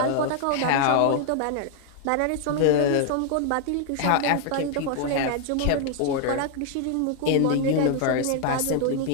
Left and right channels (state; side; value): different; both; correlation 0.00